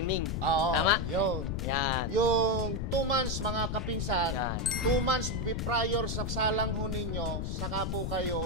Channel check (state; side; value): noise; left; rumble, 2 dB below the sound